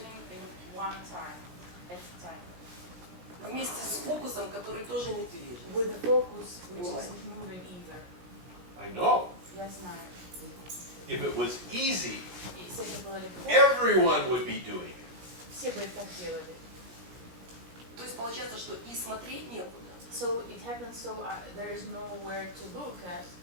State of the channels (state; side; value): late; left; 17 ms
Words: in one time, at a time. вместе с фокусом, который тоже не движется. With the focus which isn't moving either. I know. Я знаю. If it was easy, Если это было легко, everyone would be doing it. все бы это делали. То есть получается, что и смотреть некуда, So it happens so there is nowhere to look at,